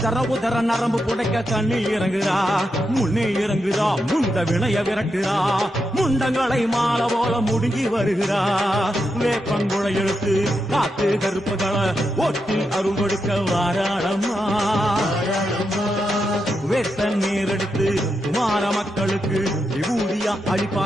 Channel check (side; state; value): both; normal; correlation 0.85